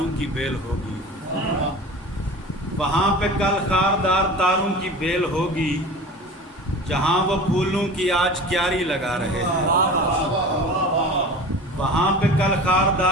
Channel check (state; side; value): normal; both; correlation 0.36